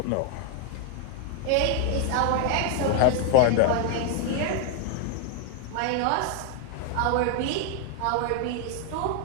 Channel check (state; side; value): different; both; correlation 0.00